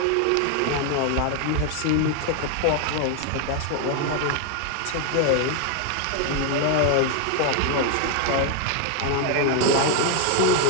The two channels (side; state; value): both; different; correlation 0.00